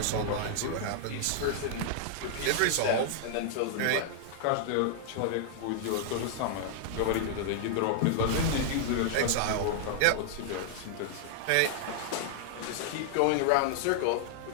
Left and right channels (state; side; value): different; both; correlation -0.01